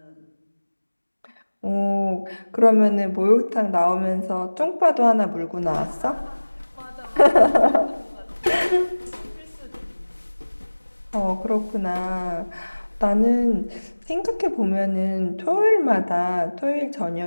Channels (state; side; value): inverted; both; correlation -1.00